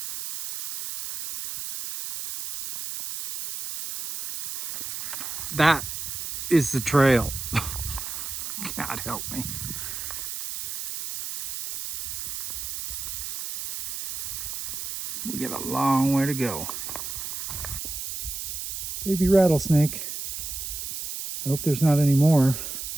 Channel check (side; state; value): right; noise; hiss, 6 dB below the sound